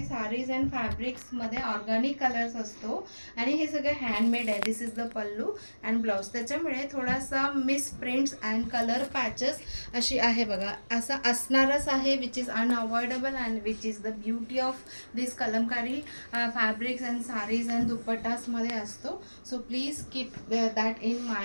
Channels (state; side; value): inverted; both; correlation -1.00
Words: साडीज अँड फॅब्रिक्समध्ये ऑर्गॅनिक कलर्स असतो आणि हे सगळं हँडमेड आहे. This is the pallu and blouse. त्याच्यामुळे थोडासा miss prints and colour patches अशी आहे बघा, असं असणारच आहे, which is unavoidable and which is the beauty of this Kalamkari fabrics and sarees and दुपट्टासमध्ये असतो. So please keep that in